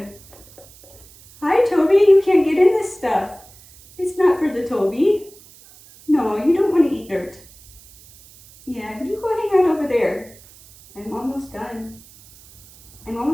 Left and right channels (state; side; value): noise; right; hiss, 23 dB below the sound